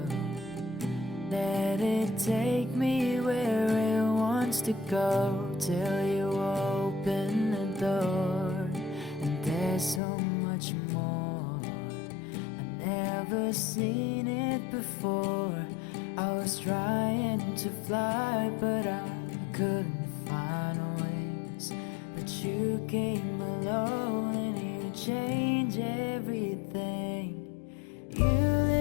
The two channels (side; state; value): right; drops out; at 10.0 s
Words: Let it take me where it wants to go, till you open the door. And there's so much more, I've never seen it before. I was trying to fly, but I couldn't find wings. But you came along and you changed everything. You